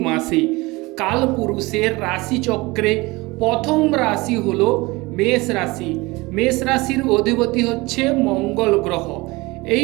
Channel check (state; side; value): quieter; left; 22.8 dB